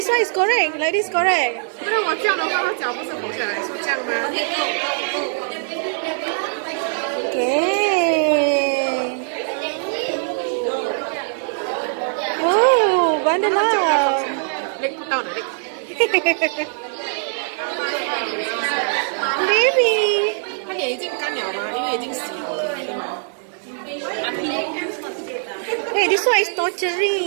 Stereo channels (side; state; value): left; silent; digital silence